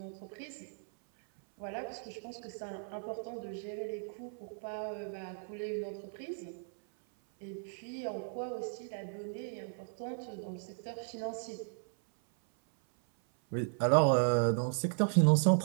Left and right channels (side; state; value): left; silent; 54 dB below the other